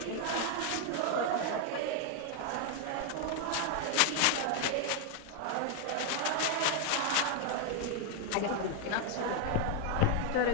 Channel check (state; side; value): different; both; correlation 0.00